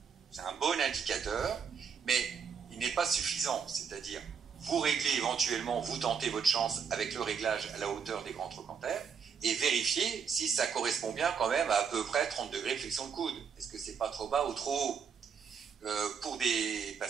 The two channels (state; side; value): quieter; left; 6.5 dB